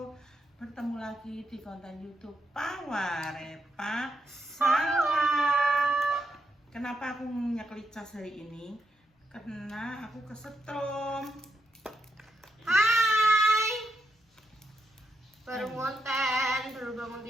Bertemu lagi di konten YouTube Pawarepa Salah. Kenapa aku nyeklik cas hari ini? Karena aku kesetrum. Hai. Baru konten, baru bangun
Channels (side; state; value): both; normal; correlation 0.82